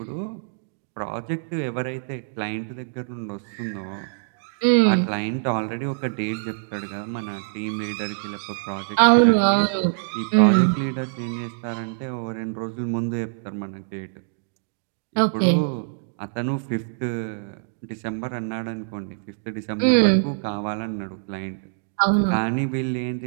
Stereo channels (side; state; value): left; silent; digital silence